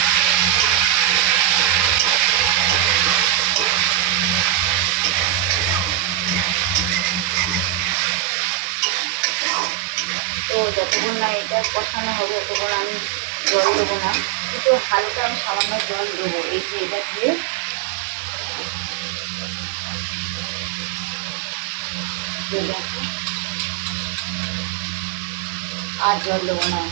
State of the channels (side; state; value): left; drops out; at 8.0 s